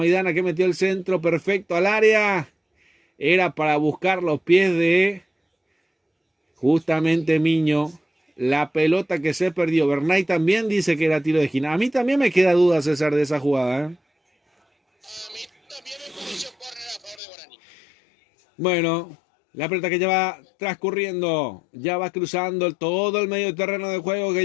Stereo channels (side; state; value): right; drops out; at 17.2 s